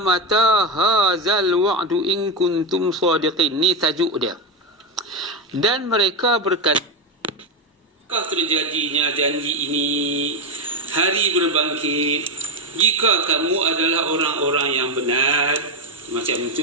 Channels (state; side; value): normal; both; correlation 0.09